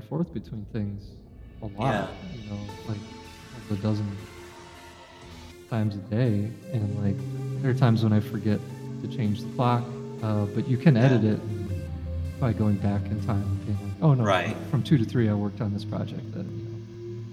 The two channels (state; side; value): identical; both; correlation 1.00